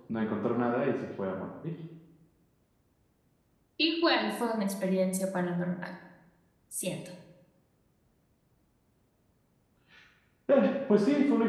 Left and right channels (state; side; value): identical; both; correlation 1.00